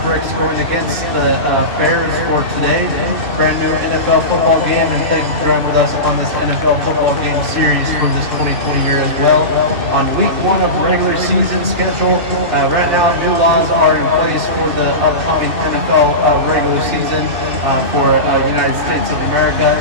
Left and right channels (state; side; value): late; left; 2.6 ms